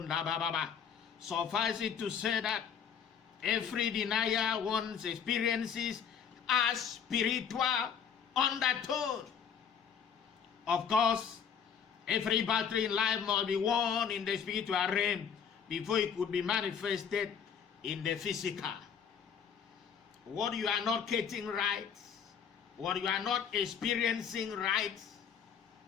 bababa. Suffice it to say that every denier once experiences a spiritual undertone. Of course, every battle in life must be won in the spiritual realm before it could be manifested in the physical. What you are not getting right, what you are not experiencing right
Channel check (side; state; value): right; quieter; 7.5 dB